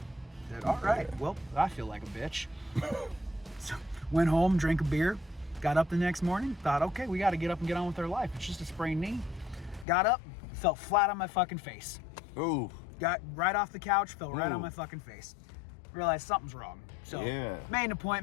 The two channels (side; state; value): right; drops out; at 9.9 s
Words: I said, all right, well, I feel like a bitch. So went home, drank a beer, got up the next morning, thought, okay, we got to get up and get on with our life. It's just a sprained knee. Got up, fell flat on my fucking face. Ooh. Got right off the couch, fell right on my fucking face. Realized something's wrong. So made an